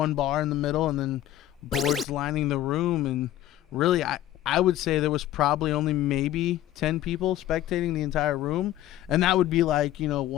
bar in the middle and then boards lining the room, and really I would say there was probably only maybe 10 people spectating the entire room, and that would be like, you know,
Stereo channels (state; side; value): quieter; right; 13.6 dB